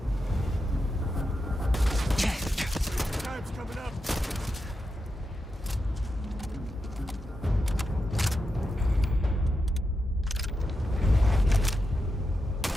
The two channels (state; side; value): normal; both; correlation 0.88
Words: Time's coming up.